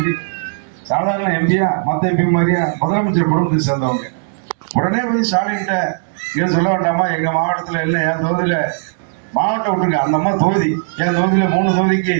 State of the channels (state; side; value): silent; left; digital silence